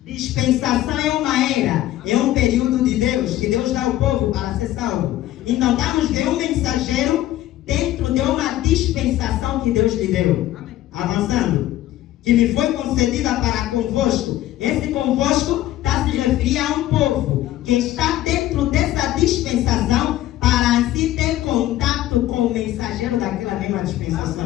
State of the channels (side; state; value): right; quieter; 14.2 dB